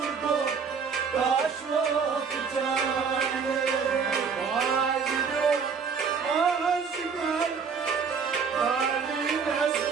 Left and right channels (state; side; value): quieter; left; 5.9 dB